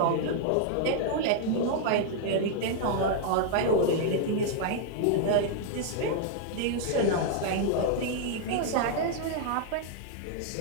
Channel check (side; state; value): both; different; correlation -0.01